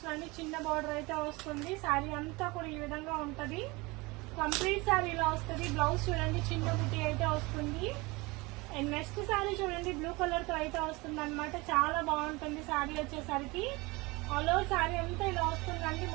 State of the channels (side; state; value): left; quieter; 24.1 dB